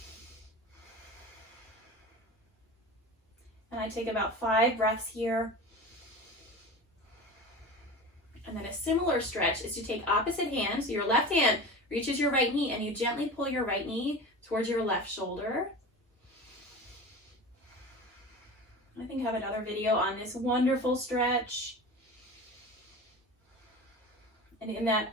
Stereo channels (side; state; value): both; normal; correlation 0.32